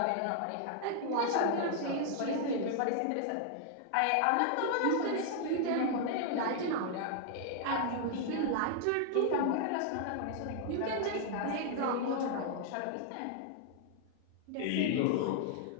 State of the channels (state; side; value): different; both; correlation 0.00